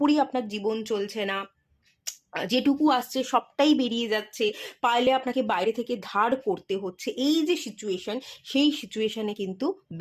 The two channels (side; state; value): both; identical; correlation 1.00